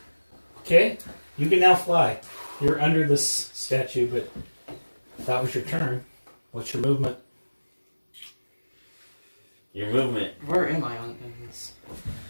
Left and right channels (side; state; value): both; inverted; correlation -1.00